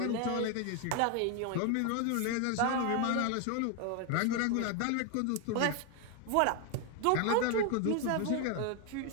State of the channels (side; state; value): both; different; correlation 0.01